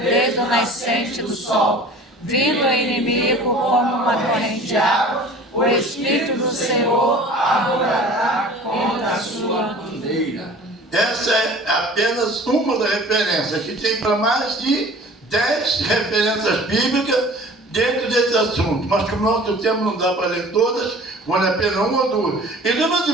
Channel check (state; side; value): normal; both; correlation 0.44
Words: o nascente do sol. Vindo o inimigo como uma corrente de água, o Espírito do Senhor arrojará contra a sua bandeira. Essa é apenas uma das referências. Aqui tem para mais de 10 referências bíblicas dentro desse assunto. Mas como o nosso tempo não dá para ler todas, vale a pena uma ou duas. Então, meus